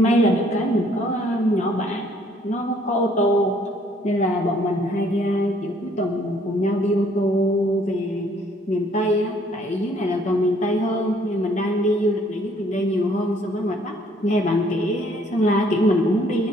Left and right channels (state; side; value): normal; both; correlation 0.62